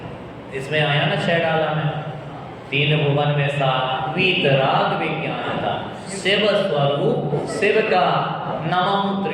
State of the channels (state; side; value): identical; both; correlation 1.00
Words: इसमें आया ना छेड़ाला में, तीन भुवन में सात वीतराग विज्ञान था, शिव स्वरूप शिव का नमः